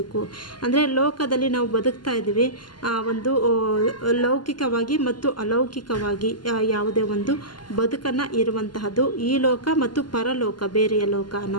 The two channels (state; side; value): late; right; 0.71 ms